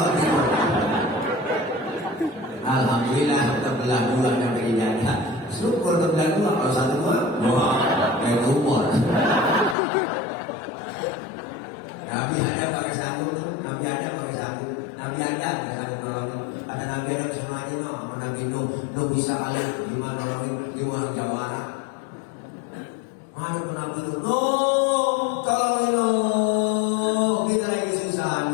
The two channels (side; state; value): right; drops out; at 9.8 s